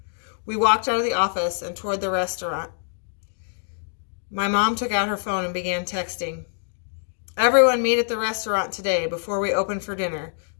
We walked out of the office and toward the restaurant. My mom took out her phone and began texting. Everyone meet at the restaurant today before we open for dinner.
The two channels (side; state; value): right; silent; digital silence